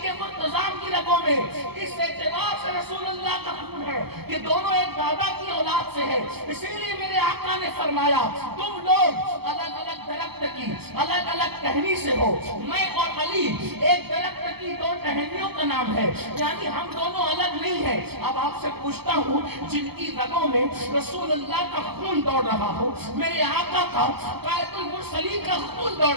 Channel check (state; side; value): late; left; 0.96 ms